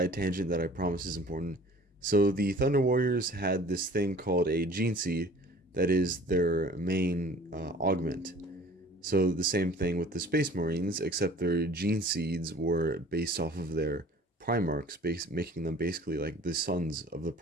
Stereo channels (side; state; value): both; normal; correlation 0.48